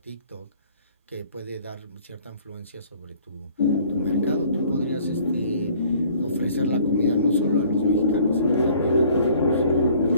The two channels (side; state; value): both; inverted; correlation -0.55